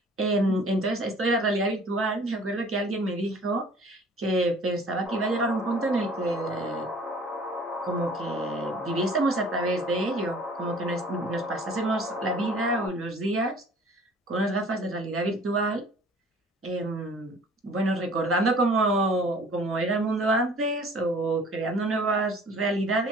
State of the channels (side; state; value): both; normal; correlation 0.51